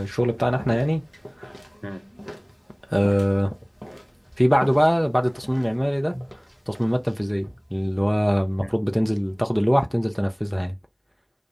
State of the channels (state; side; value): identical; both; correlation 1.00